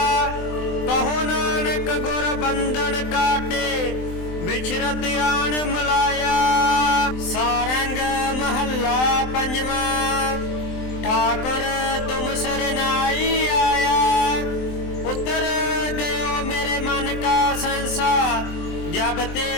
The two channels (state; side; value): late; right; 23 ms